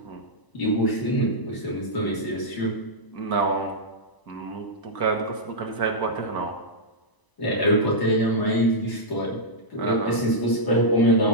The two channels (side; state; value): right; late; 1.0 ms